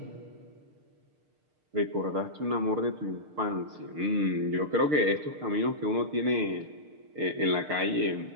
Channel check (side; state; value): left; late; 6.6 ms